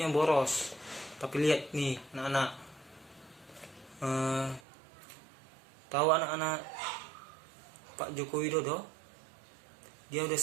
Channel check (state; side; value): drops out; left; at 4.6 s